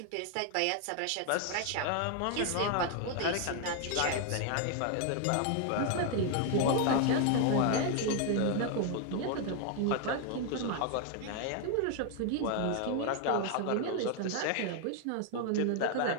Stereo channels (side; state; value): both; different; correlation 0.00